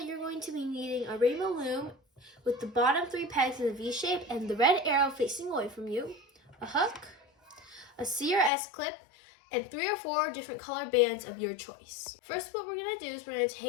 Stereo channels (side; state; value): right; drops out; at 8.5 s